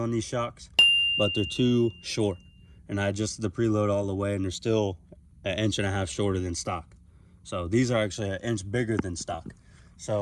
on these shocks, but they're too short. And I adjusted the preload all the way, and they're still 1.5 inches shorter than stock. So these are actually 1 inch bigger than stock.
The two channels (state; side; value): identical; both; correlation 1.00